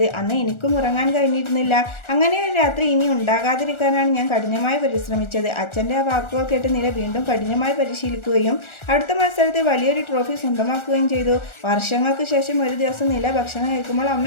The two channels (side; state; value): right; late; 1.4 ms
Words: അന്ന് എനിക്കും ഉറങ്ങാൻ കഴിഞ്ഞിരുന്നില്ല. അങ്ങനെ ഒരു രാത്രി ഇനി ഉണ്ടാകാതിരിക്കാൻ ഞാൻ കഠിനമായി പരിശ്രമിച്ചത്. അച്ഛൻ്റെ ആ വാക്കുകൾ കേട്ട് നില വീണ്ടും കഠിനമായി പരിശീലിക്കുകയും അടുത്ത മത്സരത്തിൽ വലിയൊരു ട്രോഫി സ്വന്തമാക്കുകയും ചെയ്തു. വർഷങ്ങൾക്ക് ശേഷം ഒരു ദിവസം നില ഭക്ഷണം കഴിക്കുമ്പോൾ